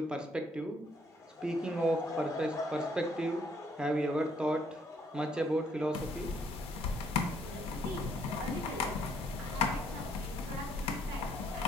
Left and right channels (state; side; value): normal; both; correlation 0.68